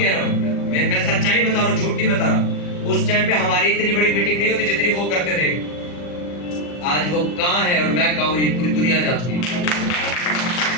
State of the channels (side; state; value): right; late; 40 ms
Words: रहा हूँ, मैं सच्चाई बता रहा हूँ, झूठ नहीं बता रहा। उस टाइम पे हमारी इतनी बड़ी मीटिंग नहीं होती जितनी वो करते थे। आज वो कहाँ है और मैं कहाँ हूँ, ये पूरी दुनिया जानती है।